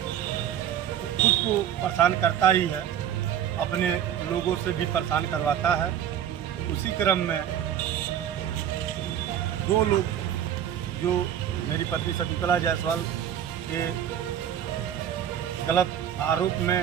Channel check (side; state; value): left; quieter; 10.0 dB